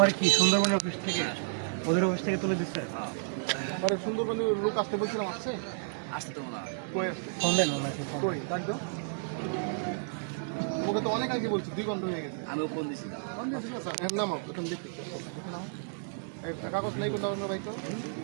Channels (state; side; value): silent; left; digital silence